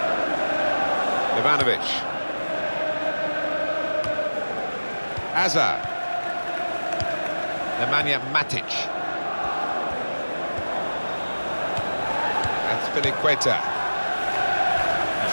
Ivanovic. Hazard. Nemanja Matic. That's Filiqueta.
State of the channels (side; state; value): both; inverted; correlation -1.00